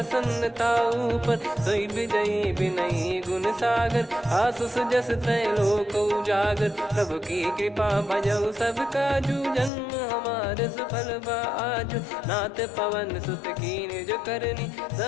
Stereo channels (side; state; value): right; drops out; at 9.7 s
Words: ऊपर, सोई विजयी विनयी गुण सागर, आसुस जस तय लोक उजागर, प्रभु की कृपा भजऊ सब काजू, जन्म हमार सफल बा आजु, नाथ पवन सुत कीन जो करनी,